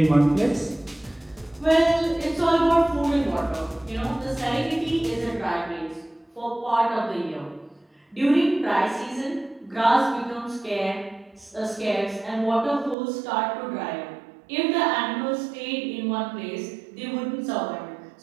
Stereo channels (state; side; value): drops out; left; at 13.0 s